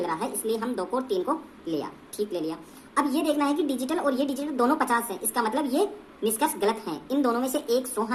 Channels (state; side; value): identical; both; correlation 1.00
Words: रहा है, इसलिए हम 2 को और 3 को लिया, ठीक, ले लिया। अब ये देखना है कि डिजिटल और ये डिजिटल दोनों 50 हैं, इसका मतलब ये निष्कर्ष गलत है। इन दोनों में से एक 100